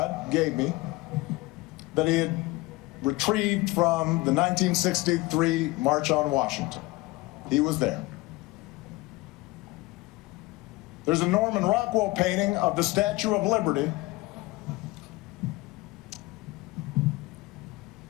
gave me that he had retrieved from the 1963 March on Washington. He was there. There's a Norman Rockwell painting of the Statue of Liberty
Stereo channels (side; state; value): right; quieter; 21.5 dB